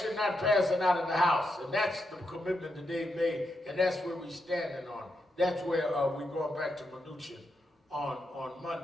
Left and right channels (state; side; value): normal; both; correlation 0.83